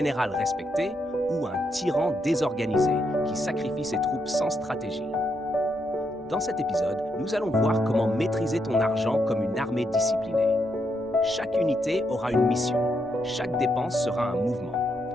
respecté ou un tyran désorganisé qui sacrifie ses troupes sans stratégie? Dans cet épisode, nous allons voir comment maîtriser ton argent comme une armée disciplinée. Chaque unité aura une mission, chaque dépense sera un mouvement,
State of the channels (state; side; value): normal; both; correlation 0.79